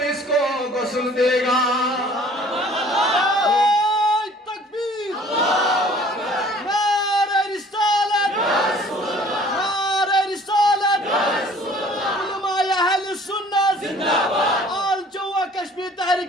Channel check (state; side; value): normal; both; correlation 0.52